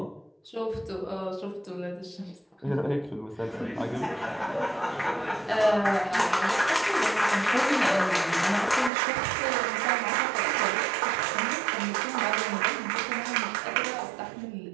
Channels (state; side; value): drops out; left; at 8.9 s